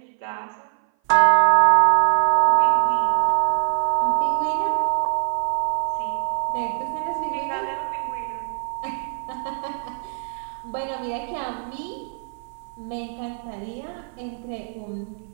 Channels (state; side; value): silent; left; 57 dB below the other